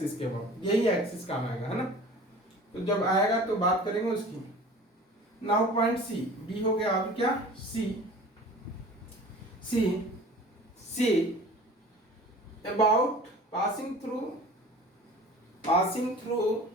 के अबाउट, यही एक्सिस काम आएगा, है ना। तो जब आएगा तो बात करेंगे उसकी। नाउ पॉइंट सी, बी हो गया, अब क्या C about passing through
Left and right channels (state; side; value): normal; both; correlation 0.42